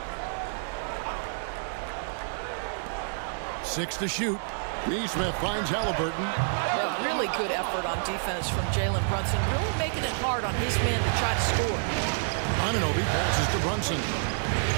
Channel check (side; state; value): left; silent; 59 dB below the other